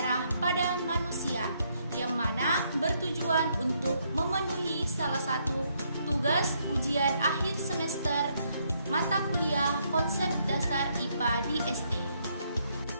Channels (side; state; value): both; inverted; correlation -0.73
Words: pada manusia, yang mana bertujuan untuk memenuhi salah satu tugas ujian akhir semester mata kuliah konsep dasar IPA di SD.